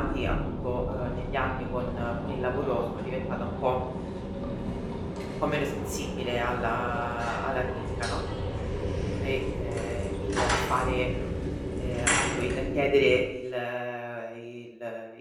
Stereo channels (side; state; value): both; identical; correlation 1.00